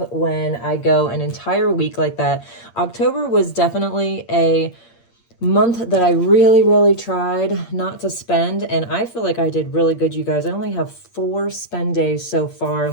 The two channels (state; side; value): late; right; 8.6 ms